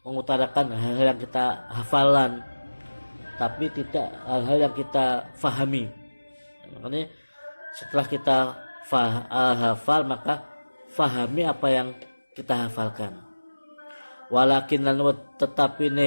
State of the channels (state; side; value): inverted; both; correlation -1.00